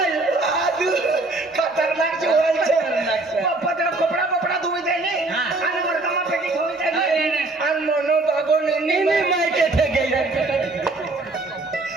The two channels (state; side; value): quieter; left; 3.1 dB